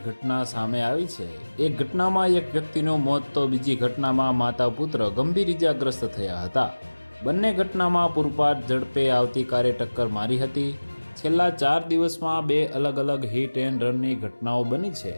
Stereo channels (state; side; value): inverted; both; correlation -1.00